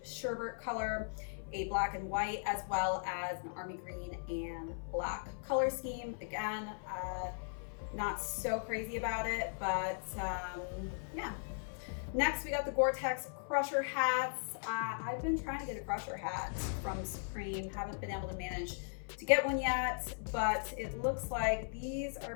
sherbet color, a black and white, as well as an army green and black color scheme. Again, not so crazy about it, but yeah. Next, we got the Gore-Tex Crusher hats. I've been trying to get a Crusher hat from Supreme, haven't been able to manage to get one yet, but it looks like these are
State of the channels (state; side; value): silent; right; 52 dB below the other